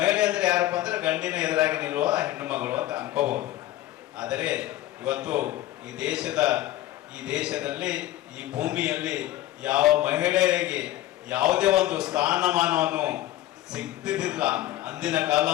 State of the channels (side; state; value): right; quieter; 15.1 dB